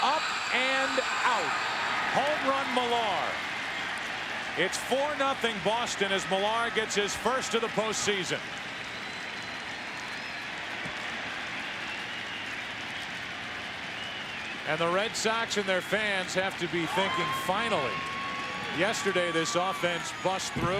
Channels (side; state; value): both; identical; correlation 1.00